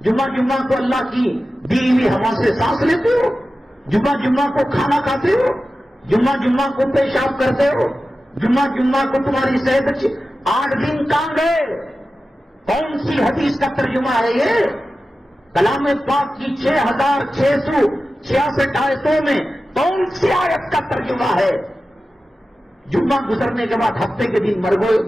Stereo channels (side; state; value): both; normal; correlation 0.94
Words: جمعہ کو اللہ کی دی ہوئی ہوا سے سانس لیتے ہو, جمعہ کو کھانا کھاتے ہو, جمعہ کو پیشاب کرتے ہو, جمعہ کو تمہاری صحت اچھی. 8 دن کہاں گئے؟ کون سی حدیث کا ترجمہ ہے یہ؟ کلام پاک کی 6666 آیتوں میں کون سی آیت کا ترجمہ ہے؟ جمعہ گزرنے کے بعد ہفتے کے دن مر